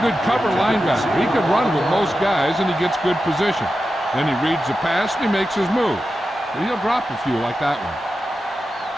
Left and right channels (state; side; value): normal; both; correlation 0.91